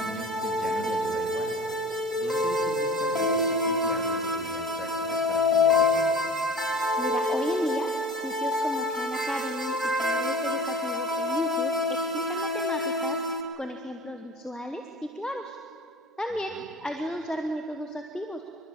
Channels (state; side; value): normal; both; correlation 0.40